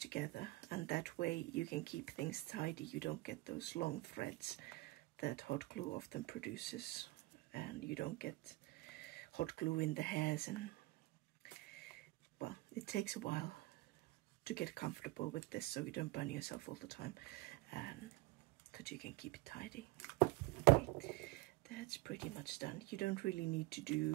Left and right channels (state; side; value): quieter; left; 21.0 dB